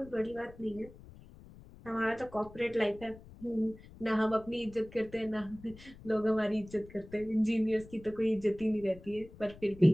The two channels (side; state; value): left; noise; rumble, 19 dB below the sound